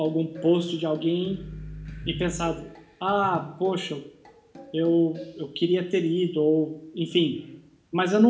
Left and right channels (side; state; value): both; identical; correlation 1.00